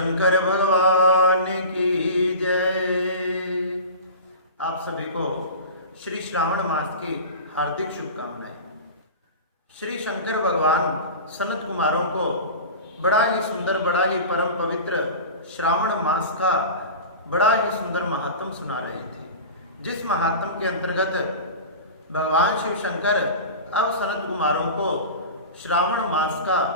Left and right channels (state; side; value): inverted; both; correlation -0.33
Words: भगवान की जय। आप सभी को श्री श्रावण मास की हार्दिक शुभकामनाएं। श्री शंकर भगवान सनत कुमारों को बड़ा ही सुंदर, बड़ा ही परम पवित्र श्रावण मास का बड़ा ही सुंदर महात्म सुना रहे थे, जिस महात्म के अंतर्गत भगवान शिव शंकर अब सनत कुमारों को श्रावण मास का